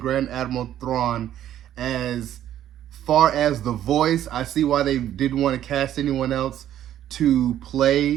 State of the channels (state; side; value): quieter; left; 11.5 dB